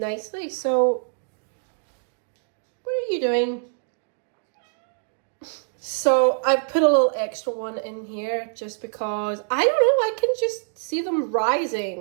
So what are you doing? So I've put a little extra one in here just because, I don't know, I can just see them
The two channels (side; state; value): left; silent; digital silence